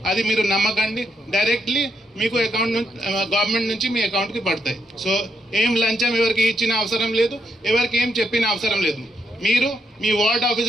అది మీరు నమ్మకండి. డైరెక్ట్లీ మీకు అకౌంట్ నుంచి గవర్నమెంట్ నుంచి మీ అకౌంట్కి పడతాయి. సో ఏం లంచం ఎవరికి ఇచ్చిన అవసరం లేదు, ఎవరికి ఏం చెప్పిన అవసరం లేదు. మీరు మీ వార్డ్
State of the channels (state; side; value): normal; both; correlation 0.78